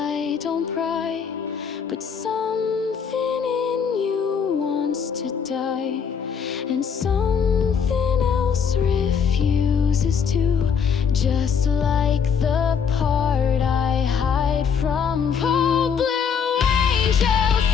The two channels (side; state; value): right; quieter; 6.8 dB